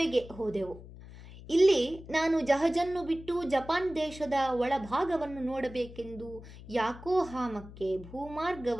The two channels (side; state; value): left; noise; hum, 16 dB below the sound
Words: ಹೋದೆವು. ಇಲ್ಲಿ ನಾನು ಜಹಜನ್ನು ಬಿಟ್ಟು ಜಪಾನ್ ದೇಶದ ಒಳಭಾಗವನ್ನು ನೋಡಬೇಕೆಂದು ಯಾಕೋಹಾಮಕ್ಕೆ